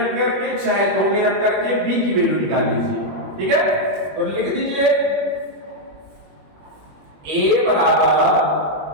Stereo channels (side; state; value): left; late; 21 ms